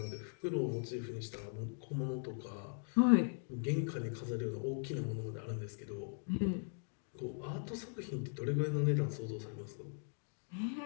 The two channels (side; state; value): right; silent; 51 dB below the other